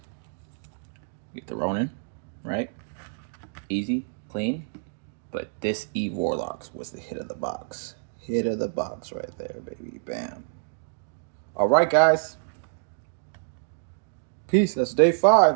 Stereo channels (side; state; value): left; silent; digital silence